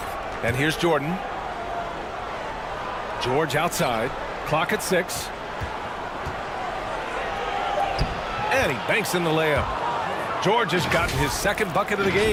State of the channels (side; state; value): both; identical; correlation 1.00